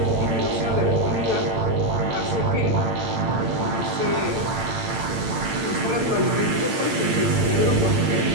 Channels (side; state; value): left; late; 8.9 ms